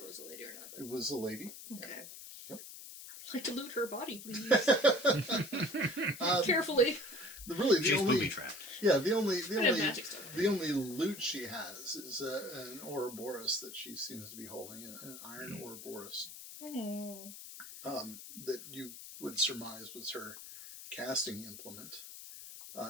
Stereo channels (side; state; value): left; noise; hiss, 13 dB below the sound